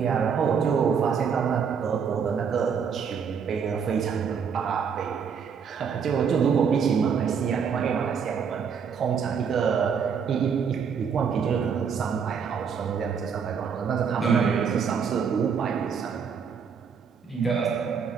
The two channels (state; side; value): quieter; left; 6.7 dB